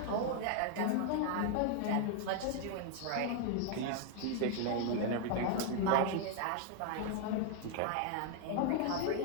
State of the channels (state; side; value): different; both; correlation 0.00